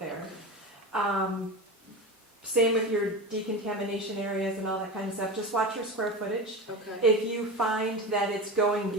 Same with your decontamination areas and all that kind of stuff. Just watch your square footage. Okay. If you find that it's going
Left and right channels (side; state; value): both; normal; correlation 0.25